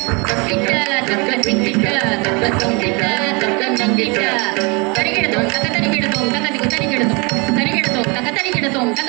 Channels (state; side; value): quieter; left; 29.8 dB